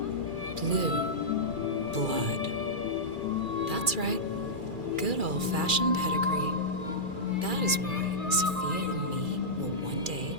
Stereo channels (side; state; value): left; late; 2.3 ms